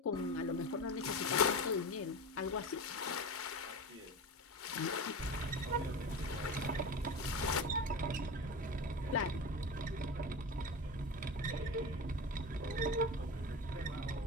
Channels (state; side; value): normal; both; correlation 0.26